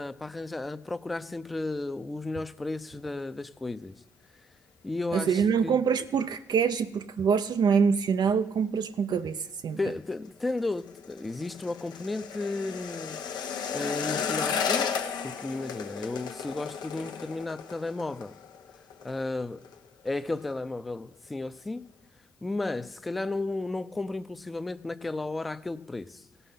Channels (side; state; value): both; normal; correlation 0.70